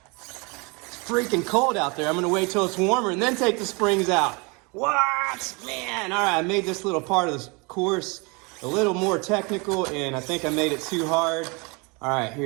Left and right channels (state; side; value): quieter; left; 29.4 dB